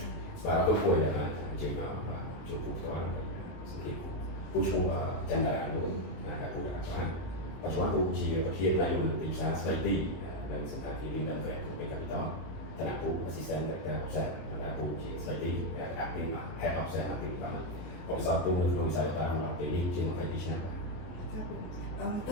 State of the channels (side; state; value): right; late; 23 ms